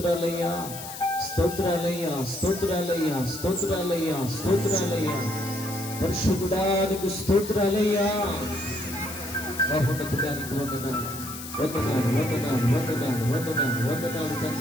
స్తోత్రాలయ్యా, స్తోత్రాలయ్యా, స్తోత్రాలయ్యా, స్తోత్రాలయ్యా, పరిశుద్ధుడానికి స్తోత్రాలయ్యా. మహోన్నతుడానికి వందనాలు, వందనాలు, వందనాలు, వందనాలు, వందనాలు, వందనాలు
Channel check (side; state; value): left; noise; hiss, 11 dB below the sound